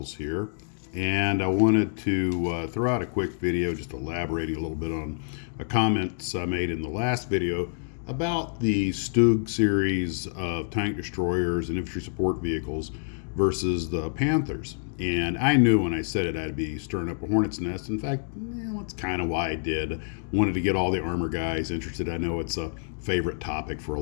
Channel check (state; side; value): silent; right; digital silence